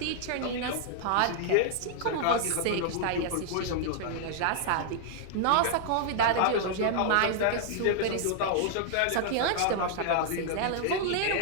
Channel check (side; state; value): both; different; correlation 0.00